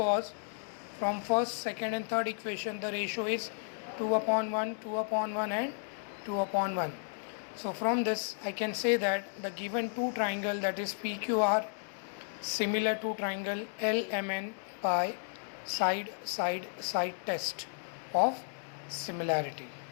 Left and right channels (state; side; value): silent; right; digital silence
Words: from first, second and third equation the ratio is 2 upon 1, 2 upon 1 and 2 upon 1. So from this I can say that the given two triangle, that is PQR, similar to triangle LMN by side test of similarity.